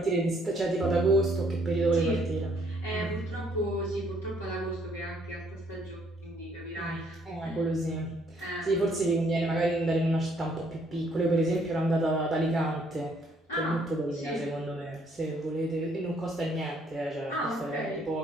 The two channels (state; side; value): normal; both; correlation 0.67